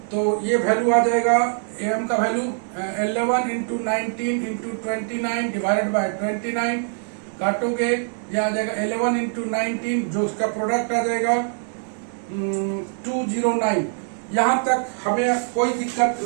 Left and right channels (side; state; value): left; silent; 63 dB below the other